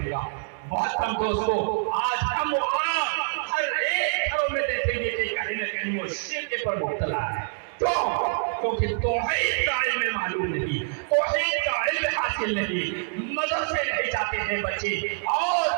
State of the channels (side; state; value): left; silent; digital silence